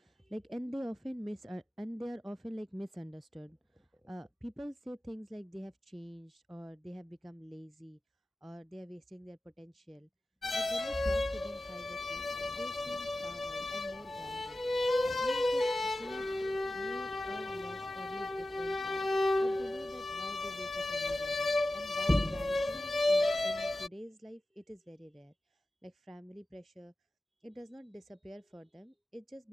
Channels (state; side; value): normal; both; correlation 0.94